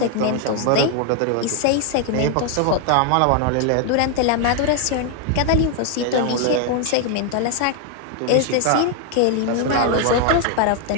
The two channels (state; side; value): different; both; correlation 0.00